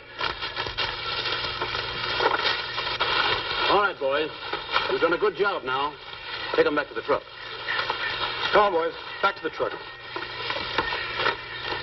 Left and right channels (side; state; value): both; identical; correlation 1.00